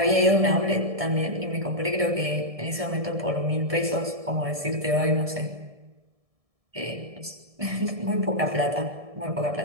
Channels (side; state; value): left; late; 1.7 ms